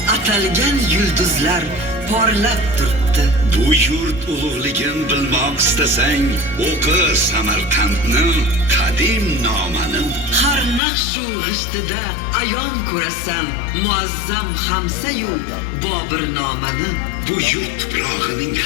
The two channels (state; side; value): drops out; right; at 10.8 s